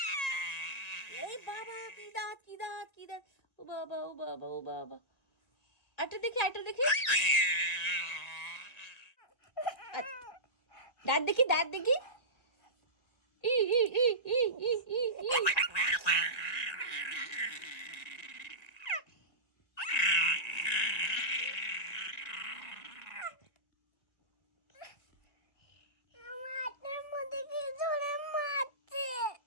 বাবা কি দাঁত, কি দাঁত, কি দাঁত! ও বাবা, ও বাবা, ও বাবা। আরেকটা দেখি, আরেকটা দেখি। দাঁত দেখি, দাঁত দেখি। ই ই ই ই ই ই ই।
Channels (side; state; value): right; late; 2.0 ms